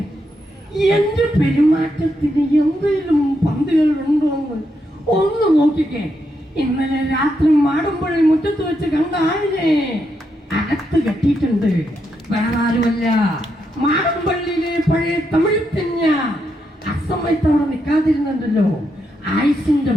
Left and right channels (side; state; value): both; normal; correlation 0.81